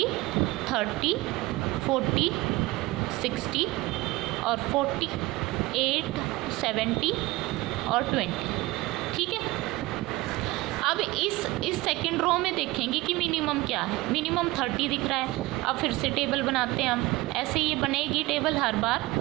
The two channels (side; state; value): left; quieter; 20.2 dB